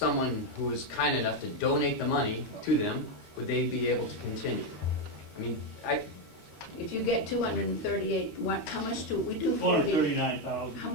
who was kind enough to donate the money to them, would they be able to continue? If you get 238, how much do we do? 439,000. How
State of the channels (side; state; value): right; late; 13 ms